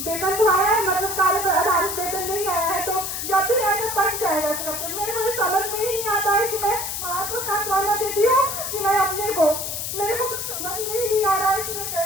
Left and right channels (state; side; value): noise; left; hiss, 4 dB below the sound